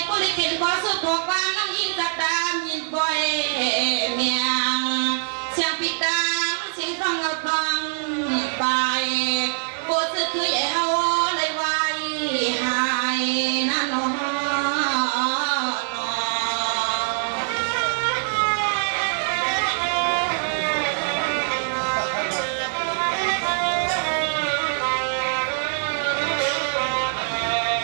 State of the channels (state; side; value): silent; left; 63 dB below the other